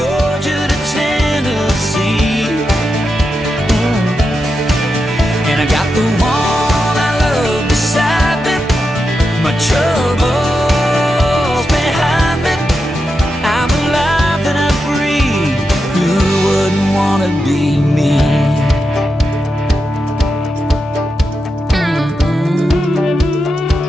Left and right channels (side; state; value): both; normal; correlation 0.87